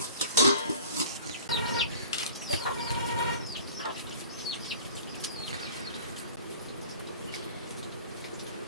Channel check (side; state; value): both; inverted; correlation -0.44